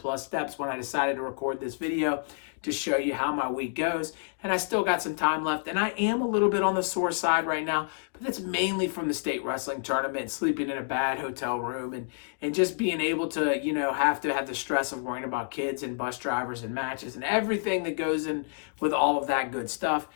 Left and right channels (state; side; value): silent; right; digital silence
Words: steps when I decided to record this video to show you how my week goes. And I still got some time left. And I am a little bit on the sore side right now, but that's mainly from the state wrestling tournament, sleeping in a bad hotel room, and just being able to, have to have the stress of worrying about kids and bus drivers and matches and everything that goes in with all of that good stuff.